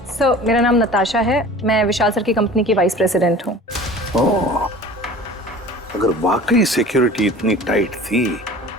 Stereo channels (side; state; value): both; normal; correlation 0.42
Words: सर मेरा नाम नताशा है, मैं विशाल सर की कंपनी की वाइस प्रेसिडेंट हूँ। ओह, अगर वाकई सिक्योरिटी इतनी टाइट थी